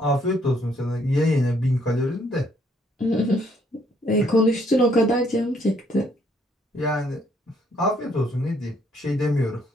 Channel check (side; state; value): both; normal; correlation 0.68